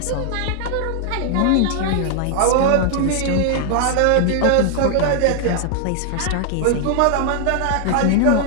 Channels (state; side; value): different; both; correlation 0.00